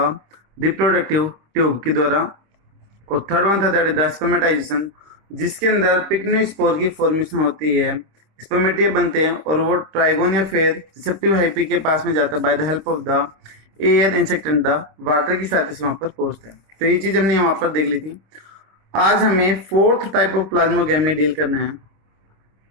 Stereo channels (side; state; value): left; late; 26 ms